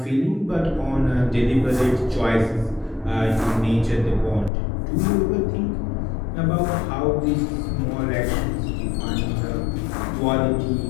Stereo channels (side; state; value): right; drops out; at 4.5 s